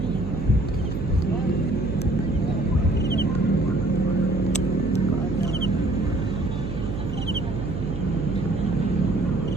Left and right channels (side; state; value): right; noise; hum, 5 dB below the sound